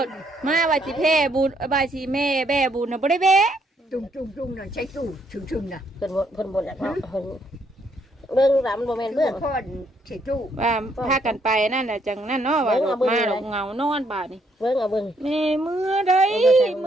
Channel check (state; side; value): normal; both; correlation 0.71